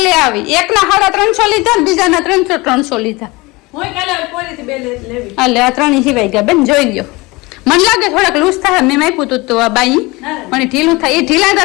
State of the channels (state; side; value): quieter; right; 23.3 dB